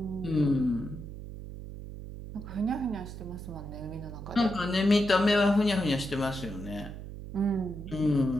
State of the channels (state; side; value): noise; right; hum, 11 dB below the sound